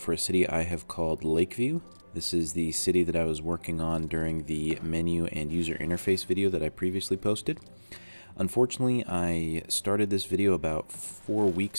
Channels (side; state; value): both; inverted; correlation -1.00